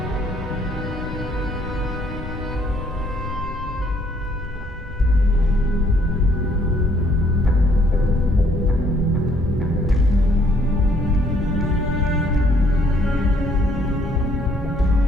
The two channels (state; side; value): normal; both; correlation 0.65